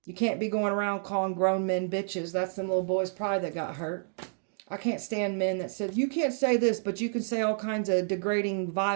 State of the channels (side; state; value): left; silent; digital silence